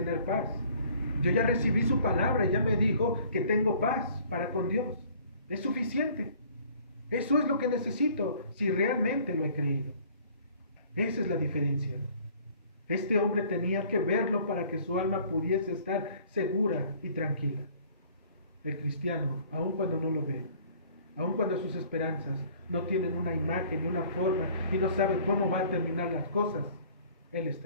paz. Yo ya recibí su palabra y ya me dijo que tengo paz para con Dios. Es suficiente. Eso es lo que necesito si realmente lo he creído. Esa es la diferencia. Este hombre tenía que verlo para que su alma pudiese estar segura y tranquila. El cristiano, aun cuando no lo ve, aun cuando sus esperanzas no tienen una imagen y una forma y no sabe cómo va a terminar las cosas, él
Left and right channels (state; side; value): inverted; both; correlation -0.54